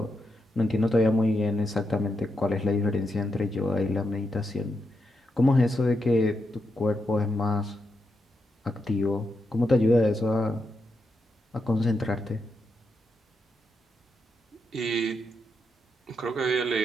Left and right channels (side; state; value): both; normal; correlation 0.83